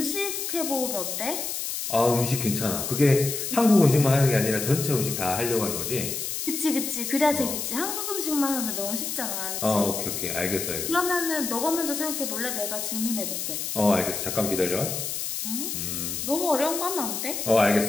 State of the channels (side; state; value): left; noise; hiss, 4 dB below the sound